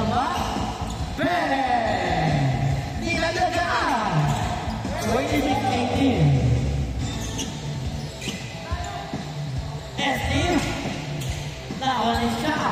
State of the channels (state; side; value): identical; both; correlation 1.00